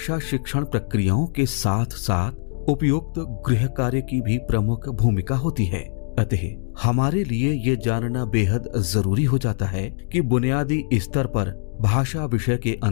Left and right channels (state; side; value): silent; right; digital silence